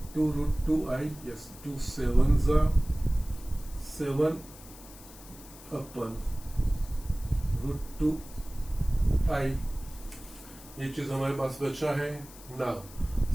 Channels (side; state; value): left; noise; hiss, 19 dB below the sound